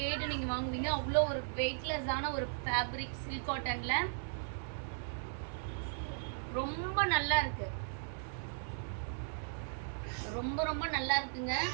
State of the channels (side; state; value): left; silent; 53 dB below the other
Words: கேட்டு நீங்கள் வாங்குவீங்க. அவ்வளோ ஒரு வெயிட்லெஸ்ஸான ஒரு ஃபேப்ரிக் சில்க் காட்டனில் ரொம்ப நல்லா இருக்குது. ரொம்ப ரொம்ப நல்லா இருக்குங்க.